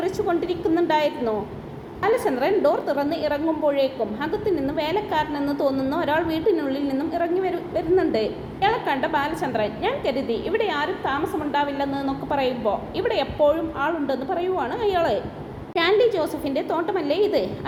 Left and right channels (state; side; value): identical; both; correlation 1.00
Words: ബാലചന്ദ്രൻ ഡോർ തുറന്ന് ഇറങ്ങുമ്പോഴേക്കും അകത്തു നിന്ന് വേലക്കാരനെന്ന് തോന്നുന്ന ഒരാൾ വീട്ടിനുള്ളിൽ നിന്നും ഇറങ്ങി വരുന്നുണ്ട്. ഇയാളെ കണ്ട ബാലചന്ദ്രൻ, ഞാൻ കരുതി ഇവിടെ ആരും താമസമുണ്ടാവില്ലെന്നൊക്കെ പറയുമ്പോൾ ഇവിടെ എപ്പോഴും ആളുണ്ടെന്ന് പറയുവാണ് അയാള്. സ്റ്റാൻലി ജോസഫിൻ്റെ തോട്ടമല്ലേ ഇത്?